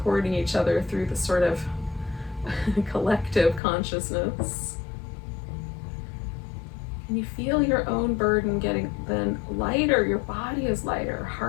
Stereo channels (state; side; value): drops out; right; at 3.6 s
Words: each other through the sort of collective consciousness. Can you feel your own burden getting then lighter? Your body is lighter,